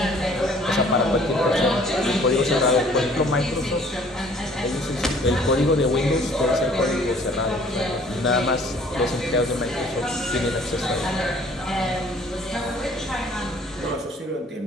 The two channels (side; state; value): both; normal; correlation 0.55